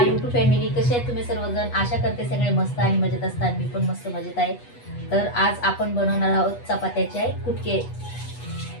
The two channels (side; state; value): right; late; 8.2 ms